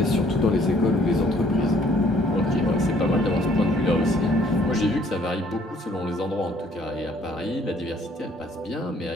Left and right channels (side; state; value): both; normal; correlation 0.61